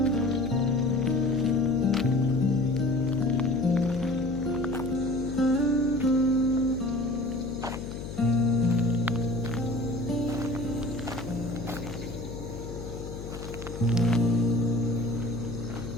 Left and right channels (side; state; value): left; noise; hum, 9 dB below the sound